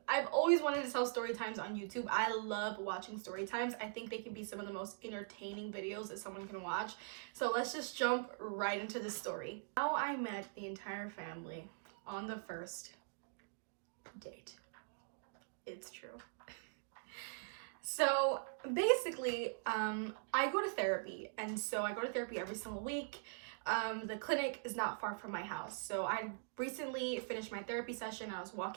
I've always wanted to tell story times on YouTube. I love watching story times. I think they can be some of the most entertaining videos that someone can watch. So let's just jump right into the story. How I met the entire family on the first date. It's true. So basically, I go to therapy, and so I go to therapy every single week. The clinic is not far from my house, so I recently finished my therapy session. I was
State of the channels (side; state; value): left; silent; digital silence